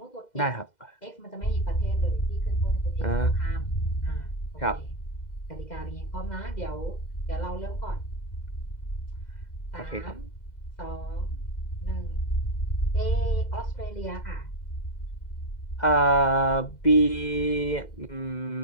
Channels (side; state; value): right; late; 2.0 ms